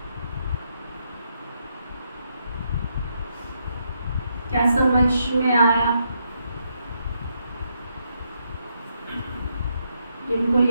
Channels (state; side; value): inverted; both; correlation -0.78